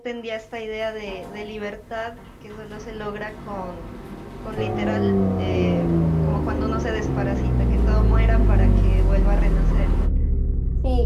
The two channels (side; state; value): both; identical; correlation 1.00